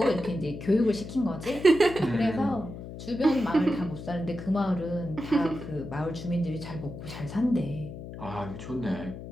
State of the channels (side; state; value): left; noise; hum, 11 dB below the sound